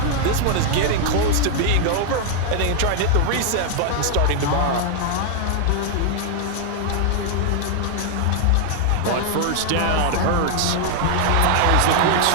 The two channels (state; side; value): different; both; correlation 0.00